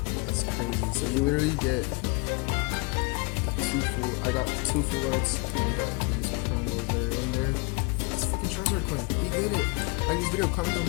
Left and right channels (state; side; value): quieter; right; 28.0 dB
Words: is crazy. So you literally get the 2 full. I got 2 full arts, and you got these promos that are in there. This fucking Charizard coin. We did it. Like this video, comment down